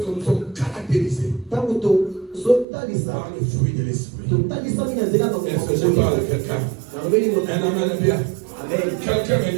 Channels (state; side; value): drops out; left; at 2.7 s